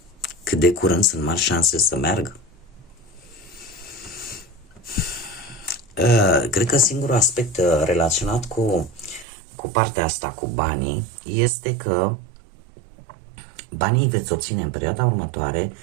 Cât de curând sunt mari șanse să meargă. Cred că singurul aspect relaționat cu partea asta, cu banii, este că banii veți obține în perioada următoare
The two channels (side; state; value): left; drops out; at 9.2 s